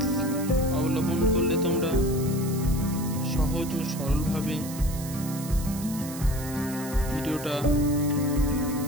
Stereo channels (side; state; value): right; noise; hiss, 12 dB below the sound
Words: অবলম্বন করলে তোমরা সহজ ও সরলভাবে ভিডিওটা